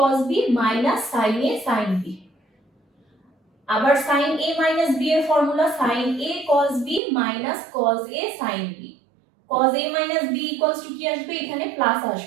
b minus sin a sin b। আবার sin a minus b এর formula sin a cos b minus cos a sin b। cos a minus b equals to কি আসবে, এখানে প্লাস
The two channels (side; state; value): left; drops out; at 7.0 s